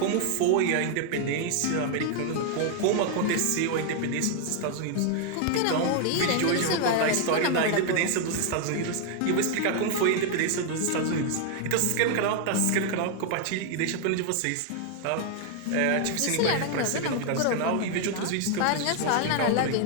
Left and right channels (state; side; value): different; both; correlation 0.00